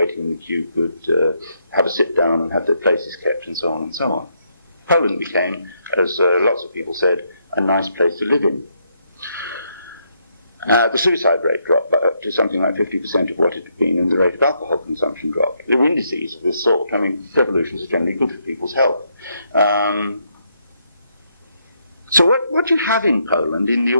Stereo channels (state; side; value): inverted; both; correlation -0.76